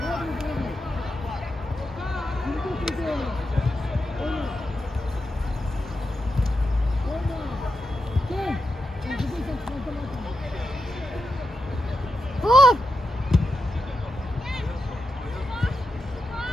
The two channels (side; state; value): both; normal; correlation 0.87